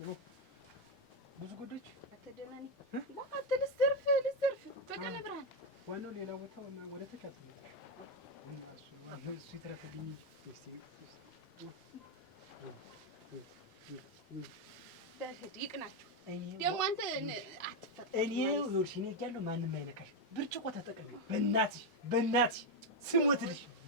ነው። ብዙ ጉዶች አትደናኒ ልዘርፍ በቀን ብርሃን ዋናው ሌላ ቦታ ወደ ተካት ነው እሱ ይተረፈልኝ በህድ ይቅናችሁ። ደግሞ አንተ አትፈጥ እኔ ወርሽኔ ያለው ማንም አይነካሽ። ብርጭቆ ተጠቅሚ በእናትሽ ስሞትልሽ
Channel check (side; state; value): both; normal; correlation 0.04